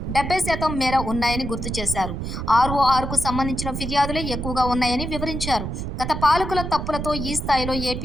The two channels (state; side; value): noise; right; rumble, 5 dB below the sound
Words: 70% మేర ఉన్నాయని గుర్తు చేశారు. ఆర్ఓఆర్కు సంబంధించిన ఫిర్యాదులే ఎక్కువగా ఉన్నాయని వివరించారు. గత పాలకుల తప్పులతో ఈ స్థాయిలో